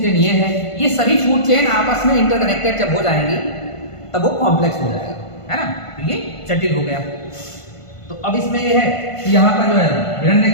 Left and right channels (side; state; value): right; late; 1.5 ms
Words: चेन ये है, ये सभी फूड चेन आपस में इंटरकनेक्टेड जब हो जाएंगी तब वो कॉम्प्लेक्स हो जाएगा, है ना, तो ये जटिल हो गया। तो अब इसमें ये है कि यहाँ पर जो है हिरण ने